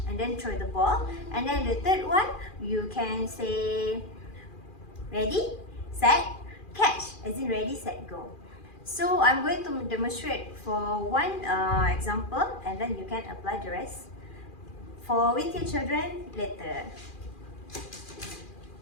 and then throw the ball. And then the third one, you can say ready, set, catch, as in ready, set, go. So I'm going to demonstrate for one example, and then you can apply the rest with your children later.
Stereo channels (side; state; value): right; late; 2.4 ms